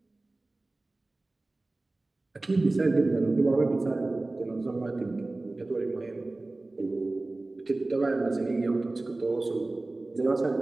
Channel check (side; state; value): left; quieter; 3.0 dB